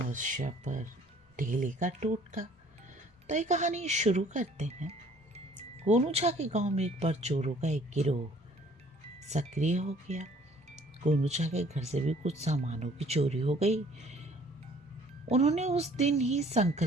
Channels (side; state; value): both; normal; correlation 0.57